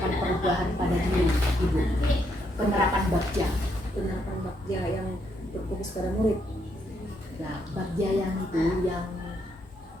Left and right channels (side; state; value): both; normal; correlation 0.76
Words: perubahan pada diri Ibu? Penerapan Bagja. Penerapan Bagja yang berfokus pada murid. Nah, Bagja yang itu yang